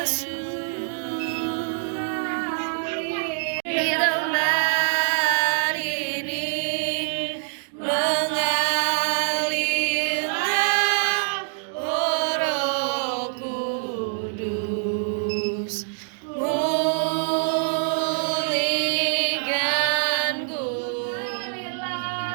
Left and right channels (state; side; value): silent; left; digital silence